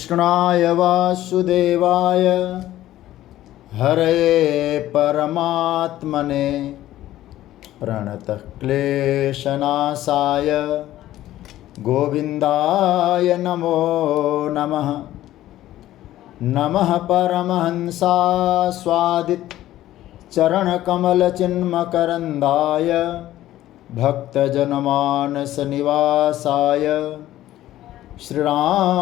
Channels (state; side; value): quieter; right; 14.2 dB